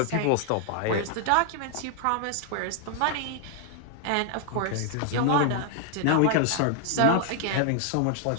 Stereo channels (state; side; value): different; both; correlation 0.00